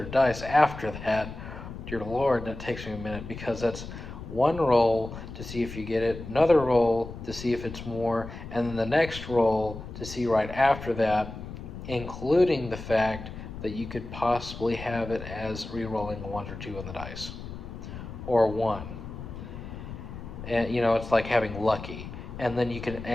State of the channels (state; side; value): noise; left; rumble, 11 dB below the sound